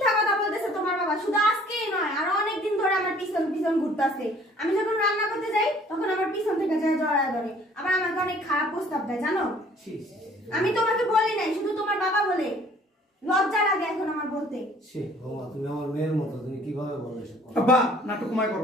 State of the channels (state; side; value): normal; both; correlation 0.55